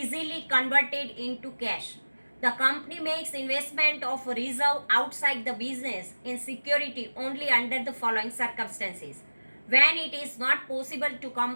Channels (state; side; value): inverted; both; correlation -1.00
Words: converted into cash. The company makes investment of reserve outside the business in security only under the following circumstances. When it is not possible